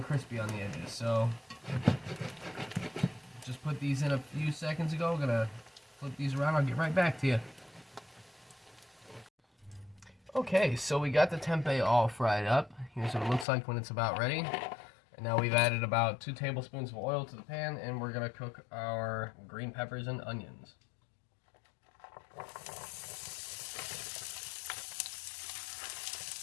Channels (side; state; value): right; drops out; at 13.5 s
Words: crispy on the edges. So, just put these in a few seconds ago. Gonna flip these around. I'll get right back to you. Okay, so we got the tempeh all fried up. Here's what it looks like when it's about ready. And now we've added about 2 tablespoons of oil to the pan, and we're gonna cook our green peppers and onions.